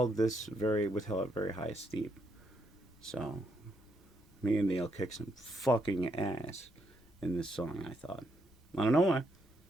this with a very high esteem. So me and Neil kicked some fucking ass in this song, I thought. I don't know why.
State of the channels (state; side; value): normal; both; correlation 0.77